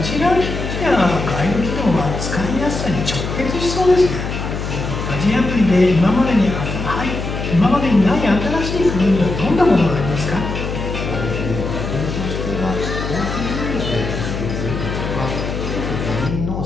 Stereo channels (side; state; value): left; noise; hum, 5 dB below the sound